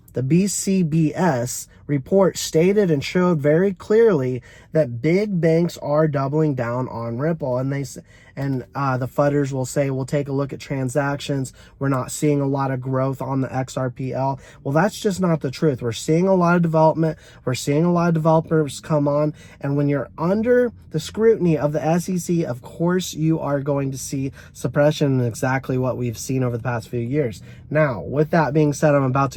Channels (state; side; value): identical; both; correlation 1.00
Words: the BCBS report stated and showed very clearly that big banks are doubling down on Ripple, and the FUDers will say, we'll take a look at transactions. We're not seeing a lot of growth on the XRPL. Well, that's just not the truth. We're seeing a lot of development. We're seeing a lot of developers come on. And when you're under the scrutiny of the SEC, of course, you are going to see suppression, and exactly what we've seen over the past few years. Now, with that being said, I'm about